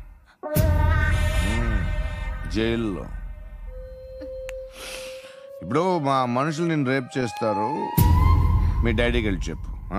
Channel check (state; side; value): identical; both; correlation 1.00